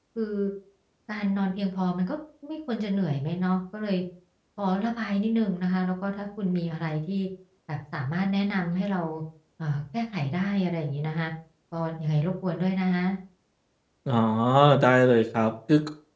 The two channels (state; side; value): identical; both; correlation 1.00